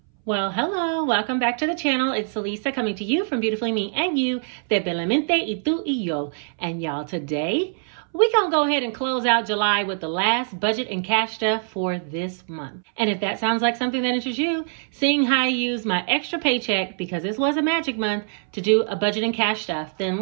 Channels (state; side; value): silent; left; 62 dB below the other